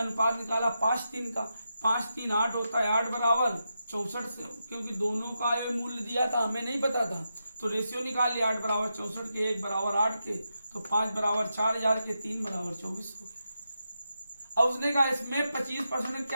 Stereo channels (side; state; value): both; inverted; correlation -0.87